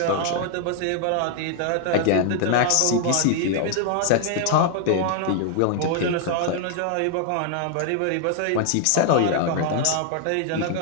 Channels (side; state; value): both; different; correlation 0.00